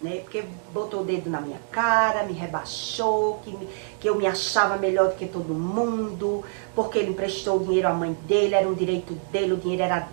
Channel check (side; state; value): left; silent; digital silence